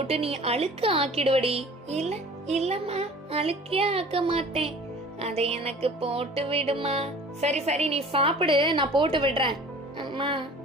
நீ அழுக்க ஆக்கிடுவடி. இல்ல இல்லம்மா, அழுக்கே ஆக்க மாட்டேன், அதை எனக்கு போட்டு விடுமா. சரி சரி, நீ சாப்பிடு, நான் போட்டு விடுறேன். அம்மா.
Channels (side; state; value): both; normal; correlation 0.45